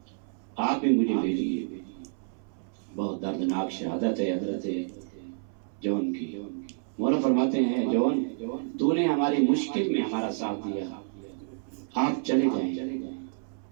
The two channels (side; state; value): left; silent; 59 dB below the other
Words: آپ بھی مجھے بھیجیے۔ بہت دردناک شہادت ہے حضرت جون کی۔ مولا فرماتے ہیں جون تو نے ہماری مشکل میں ہمارا ساتھ دیا، آپ چلے جائیں،